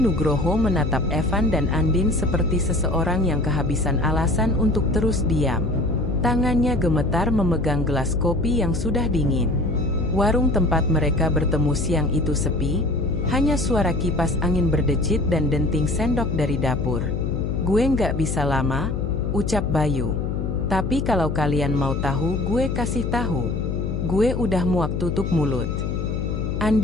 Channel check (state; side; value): noise; left; hum, 2 dB below the sound